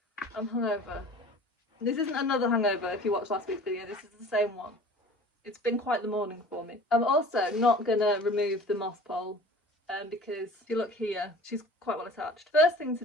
I'm hungover. This isn't another hangover if you watched last week's video. This is the same one. It's been quite the morning for me. I'm also not going to remove the moss pole because if you look here, she's quite well attached. First thing to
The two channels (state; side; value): normal; both; correlation 0.43